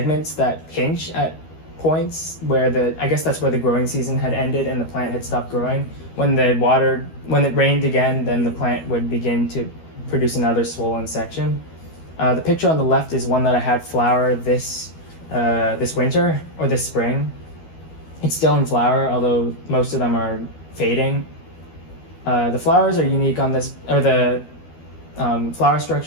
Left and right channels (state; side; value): late; right; 12 ms